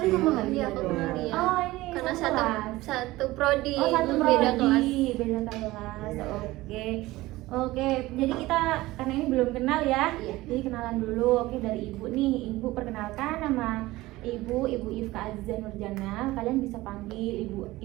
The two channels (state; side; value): quieter; left; 18.6 dB